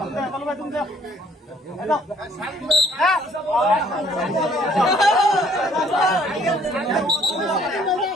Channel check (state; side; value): normal; both; correlation 0.61